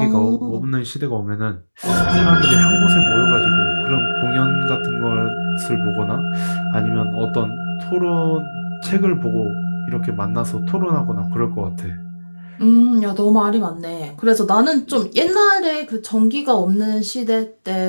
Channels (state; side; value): inverted; both; correlation -1.00